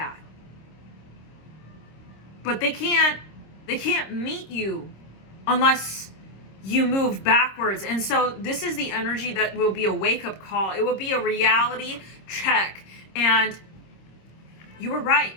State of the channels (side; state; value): right; late; 26 ms